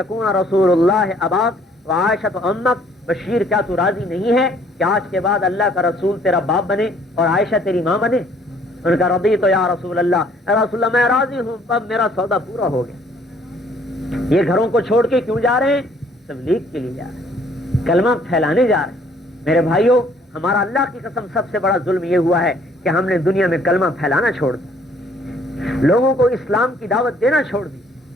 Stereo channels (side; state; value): both; normal; correlation 0.61